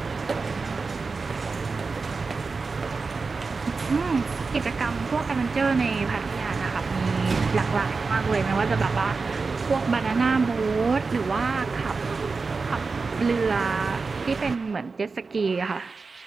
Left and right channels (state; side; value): quieter; left; 4.4 dB